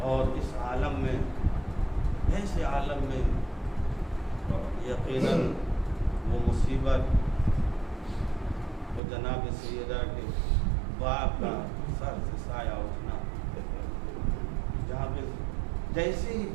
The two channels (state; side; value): drops out; left; at 9.0 s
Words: और इस आलम में, ऐसे आलम में यकीनन वो मुसीबत, वो जनाब सैयदा के बाप का सर से साया उठना, जहाँ पे जैसे ही